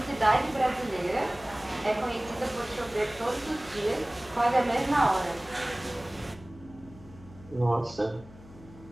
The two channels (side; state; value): left; noise; hum, 20 dB below the sound